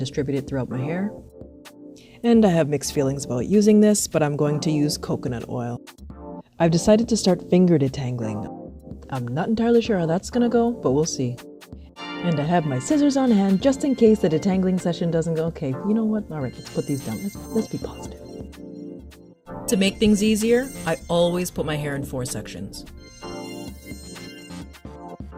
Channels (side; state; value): both; identical; correlation 1.00